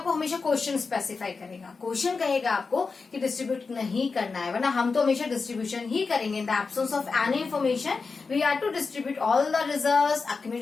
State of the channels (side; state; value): right; quieter; 4.6 dB